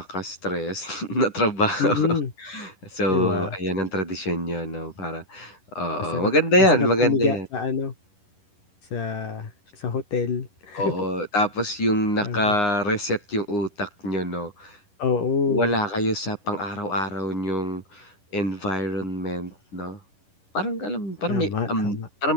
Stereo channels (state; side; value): late; right; 11 ms